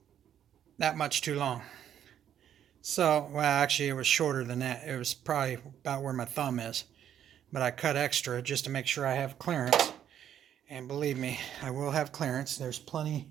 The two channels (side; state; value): left; quieter; 10.0 dB